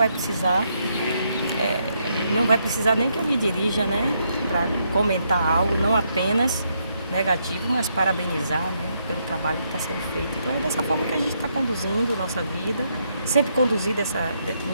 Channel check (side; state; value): both; inverted; correlation -0.77